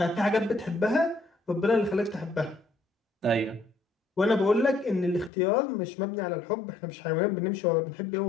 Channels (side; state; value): right; drops out; at 5.3 s